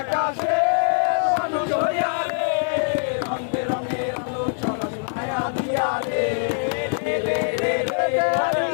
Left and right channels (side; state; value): right; silent; digital silence